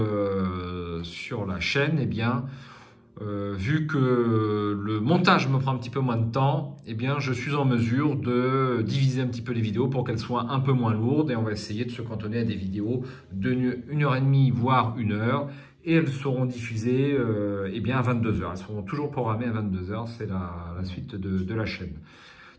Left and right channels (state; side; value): identical; both; correlation 1.00